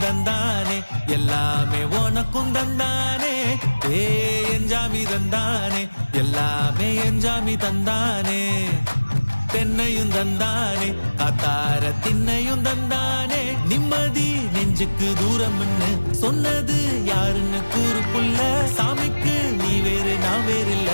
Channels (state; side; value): inverted; both; correlation -1.00